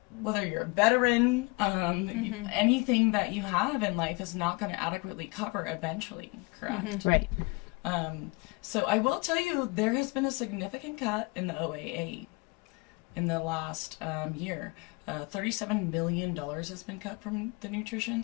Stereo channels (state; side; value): quieter; right; 28.6 dB